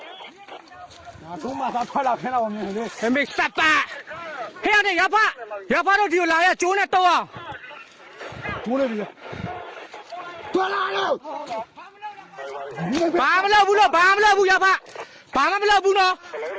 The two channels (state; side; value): identical; both; correlation 1.00